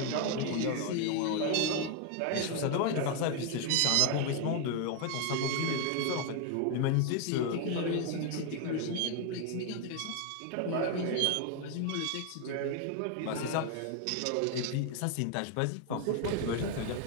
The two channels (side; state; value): both; different; correlation 0.01